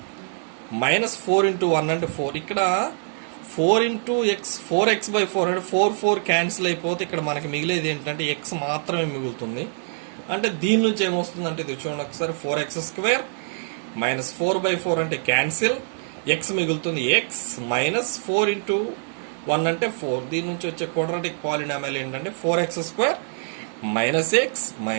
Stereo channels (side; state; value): left; silent; 62 dB below the other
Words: మైనస్ 4 ఇంటూ 1 అంటే 4. ఇక్కడ 4 ఇంటూ ఎక్స్ 4x/4 అంటే 4 క్యాన్సిల్ అయిపోతే ఇక్కడ మనకి మిగిలేది ఏంటంటే ఎక్స్ మాత్రమే మిగులుతుంది. అంటే దీని నుంచి ఏమొస్తుంది అంటే ఇది చూడండి ఒకసారి, 4x² మైనస్ 4/4 అంటే క్యాన్సిల్, ఎక్స్ మిగులుతుంది ఎక్స్, మైనస్ 4 ఇంటూ 1 అంటే 4. దీని నుంచి వచ్చే క్వాడ్రాటిక్ పాలినామియల్ ఏంటంటే 4x² మైనస్ ఎక్స్